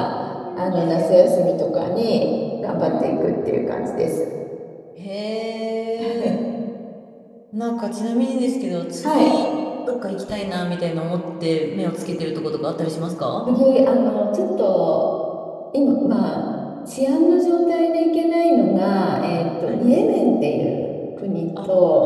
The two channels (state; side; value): identical; both; correlation 1.00